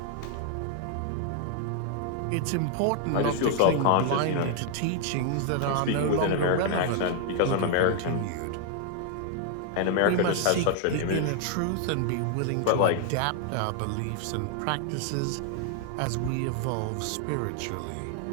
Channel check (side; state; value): both; different; correlation 0.00